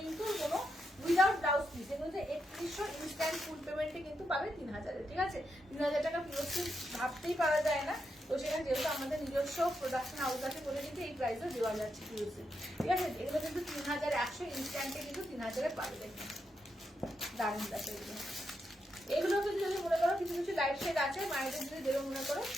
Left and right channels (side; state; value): both; normal; correlation 0.83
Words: কিন্তু কোনো উইদাউট ব্লাউজ পিস, এগুলো যে 3100, ইনস্ট্যান্ট ফুল পেমেন্টে কিন্তু পাবে 3000, ঠিক আছে, 3000 টাকা পিওর সিল্ক ভাবতেই পারা যায় না। তো সেখানে যেহেতু আমাদের নিজস্ব প্রোডাকশন হাউস আছে বলে কিন্তু এই প্রাইসও দেওয়া যাচ্ছে পিওর সিল্ক, ঠিক আছে। এগুলো কিন্তু 3100, ইনস্ট্যান্টে কিন্তু 3000-এ পাবে, দেখুন দারুণ দেখো এগুলো। এগুলো কিন্তু যদি মনে করো কিছু কিছু লাইট শেড আছে মায়েদের যদি দেবে মনে করো,